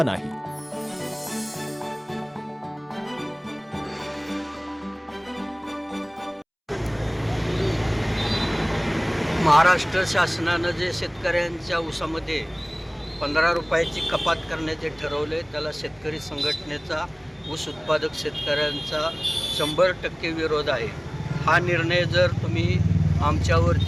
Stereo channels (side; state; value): both; identical; correlation 1.00